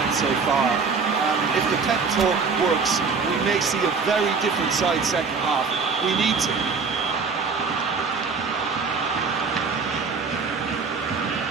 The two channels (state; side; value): quieter; left; 5.0 dB